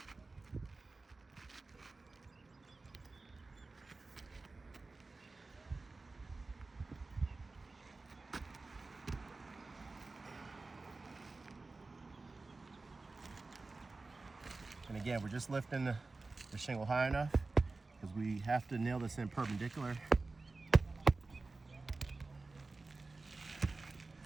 And again, we're just lifting the shingle high enough because we have to nail this in perpendicular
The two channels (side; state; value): left; quieter; 3.6 dB